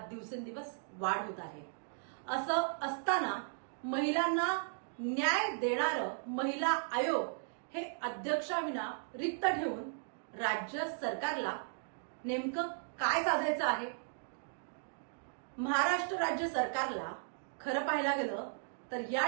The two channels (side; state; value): left; silent; digital silence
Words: वाढ होत आहे। असं असताना महिलांना न्याय देणारं महिला आयोग हे अध्यक्षाविना रिक्त ठेवून राज्य सरकारला नेमकं काय साधायचं आहे? महाराष्ट्र राज्य सरकारला खरं पाहायला गेलं तर या